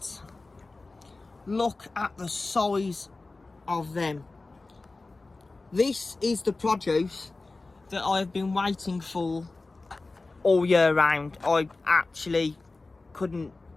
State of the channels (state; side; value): quieter; right; 3.4 dB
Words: look at the size of them. This is the produce that I've been waiting for all year round. I actually couldn't